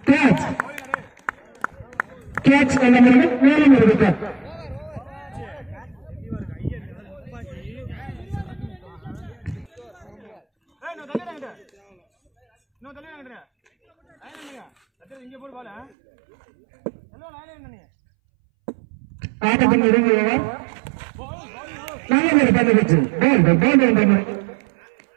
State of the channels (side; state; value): left; drops out; at 15.9 s